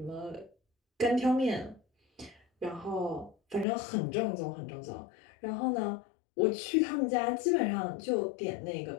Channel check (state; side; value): drops out; right; at 3.7 s